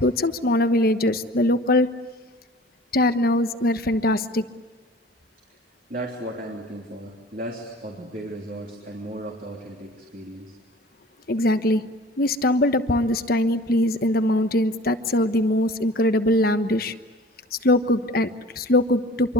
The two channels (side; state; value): both; normal; correlation 0.45